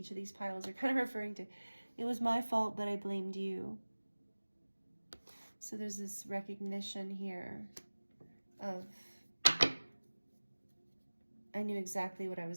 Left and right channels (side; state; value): both; inverted; correlation -1.00